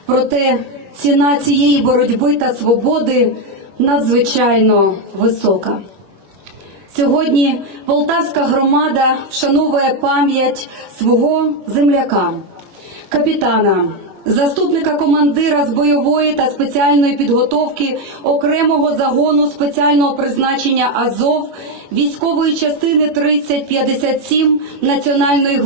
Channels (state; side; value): late; left; 21 ms